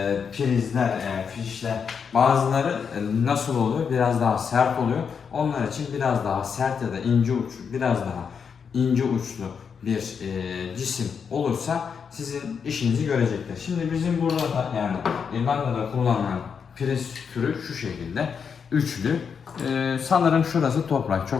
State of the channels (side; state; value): right; quieter; 6.5 dB